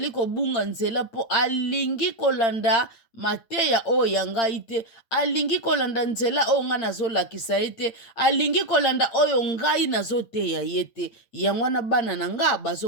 kobunga nzela po alingi kolanda mateya oyo ya ngai te, alingi kolanda nzela oyo nga nazolakisa ye te, alingi kolanda oyo ngai nazoteya ye te. Yango wana bana na nga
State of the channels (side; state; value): right; late; 8.8 ms